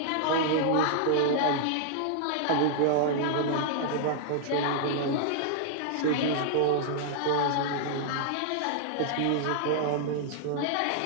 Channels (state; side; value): different; both; correlation -0.01